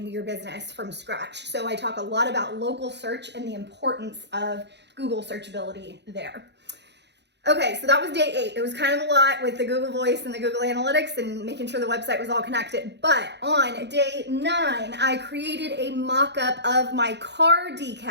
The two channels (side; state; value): left; late; 0.50 ms